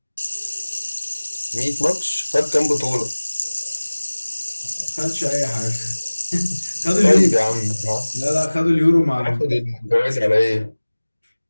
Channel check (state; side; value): inverted; both; correlation -1.00